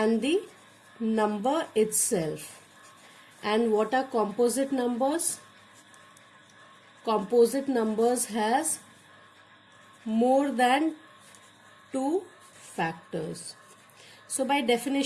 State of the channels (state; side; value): identical; both; correlation 1.00